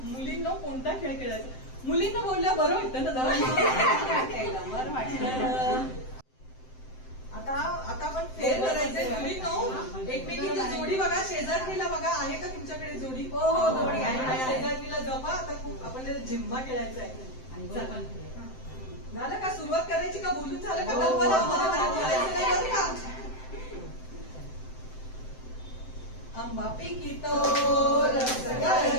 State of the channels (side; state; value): right; late; 7.8 ms